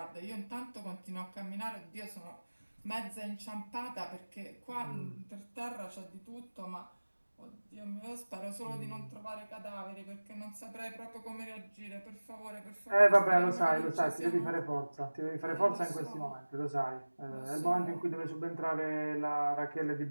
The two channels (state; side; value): inverted; both; correlation -1.00